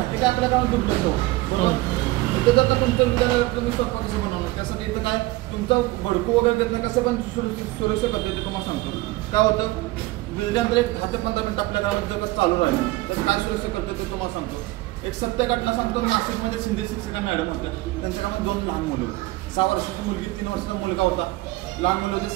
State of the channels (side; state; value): left; quieter; 19.5 dB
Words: हे काय आपल्या कामात दुबलं बरोबर. इथं जर का तुमचं विद्यालय तुम्ही स्वतः कसं बनवणार त्यासाठी इथं काय तुमचं भडकू वगैरे देत नाही, कसं पण सुरक्षित करतो ते तुम्हाला सांगतो. काय होतं विजल्यानंतर एक 10 ते 15 मिनिट आपल्या गावात जर चालू राहिलं तर काय सुरक्षित करतो ते तुम्हाला सांगतो. एक सत्य घटना सांगतो. नाशिकमध्ये शिंदे शिक्षिका मॅडम होत्या, त्यांच्या कामात 2 लहान मुलं, 6 वर्षाची मुलगी, 3 वर्षाचा मुलगा होता. लहान मुलं होते,